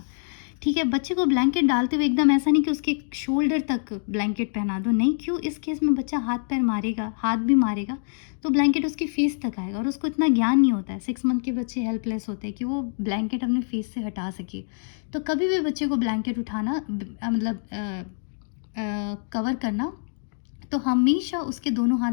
ठीक है? बच्चे को ब्लैंकेट डालते हुए एकदम ऐसा नहीं कि उसके शोल्डर तक ब्लैंकेट पहना दो, नहीं। क्यों? इस केस में बच्चा हाथ पैर मारेगा, हाथ भी मारेगा, तो ब्लैंकेट उसकी फेस तक आएगा, और उसको इतना ज्ञान नहीं होता है। 6 मंथ के बच्चे हेल्पलेस होते हैं कि वो ब्लैंकेट अपने फेस से हटा सके। तो कभी भी बच्चे को ब्लैंकेट उठाना मतलब कवर करना, तो हमेशा उसके दोनों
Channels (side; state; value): right; silent; digital silence